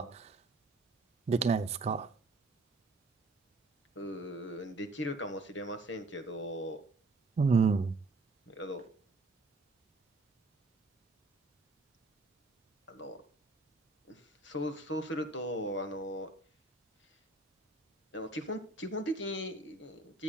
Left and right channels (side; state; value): left; quieter; 3.2 dB